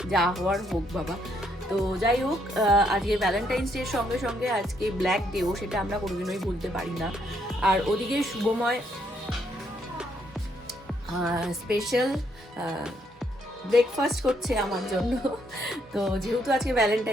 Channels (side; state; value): both; normal; correlation 0.73